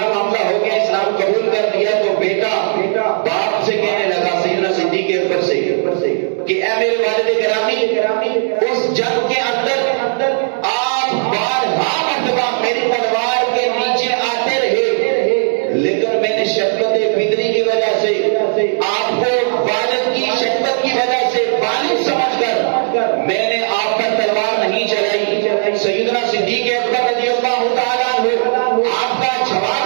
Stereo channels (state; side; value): silent; left; digital silence